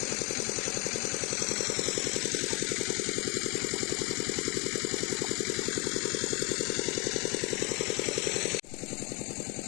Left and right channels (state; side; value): quieter; right; 29.3 dB